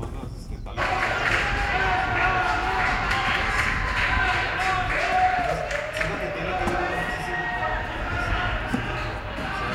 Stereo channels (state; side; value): identical; both; correlation 1.00